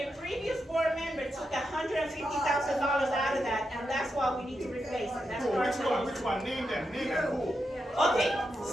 a previous board member took $150,000 out of that, and that's why we need to replace it. That's Who? part Which of one? it. Which one? Name them. Name them. Who? Okay,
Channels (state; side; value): normal; both; correlation 0.86